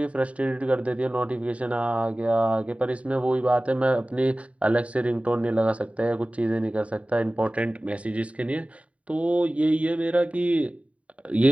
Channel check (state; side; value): late; left; 0.066 ms